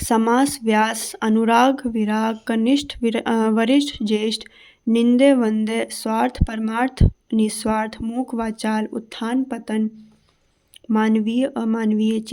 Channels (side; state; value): both; identical; correlation 1.00